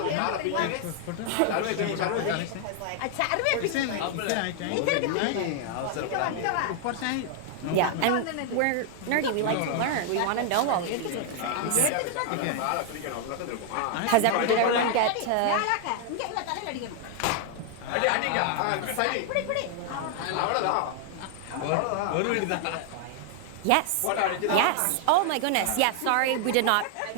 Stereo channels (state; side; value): different; both; correlation 0.00